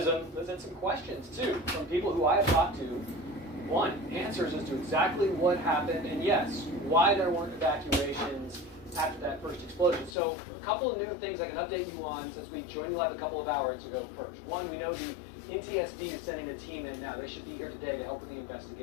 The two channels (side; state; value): right; drops out; at 10.2 s